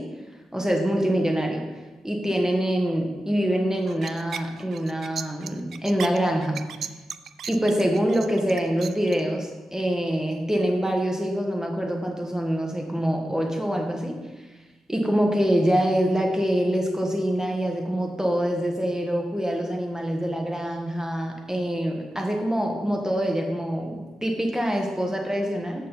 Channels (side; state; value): both; normal; correlation 0.93